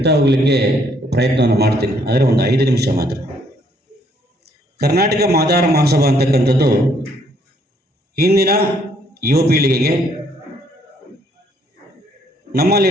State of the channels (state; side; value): normal; both; correlation 0.67